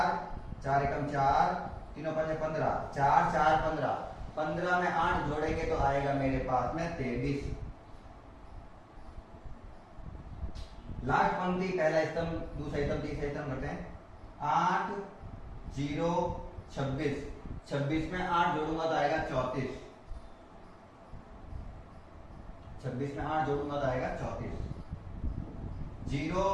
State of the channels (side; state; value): both; identical; correlation 1.00